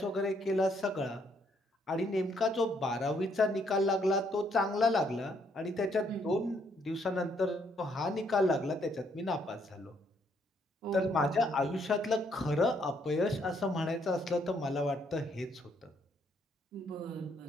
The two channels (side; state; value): both; normal; correlation 0.70